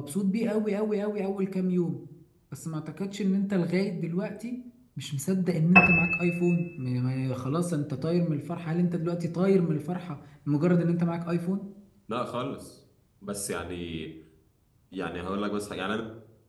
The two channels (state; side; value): identical; both; correlation 1.00